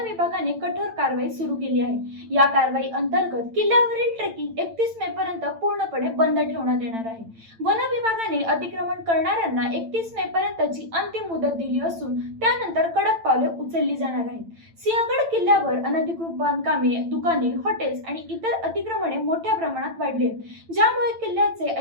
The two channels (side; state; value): left; late; 8.9 ms